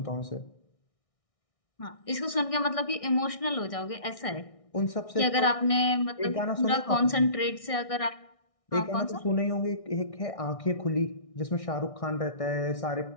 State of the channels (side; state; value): right; late; 1.6 ms